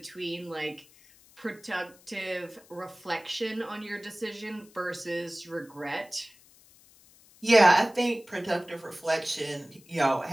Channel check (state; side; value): noise; left; hiss, 26 dB below the sound